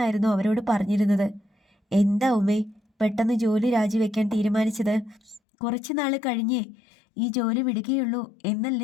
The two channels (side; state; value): right; drops out; at 5.4 s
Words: അവരോട് പറഞ്ഞിരുന്നത്. എന്താ ഉമ്മേ പെട്ടെന്ന് ജോലി രാജിവെക്കാൻ തീരുമാനിച്ചത്? കുറച്ചു നാൾ കഴിഞ്ഞേ ഈ ജോലി വിടുകയുള്ളൂ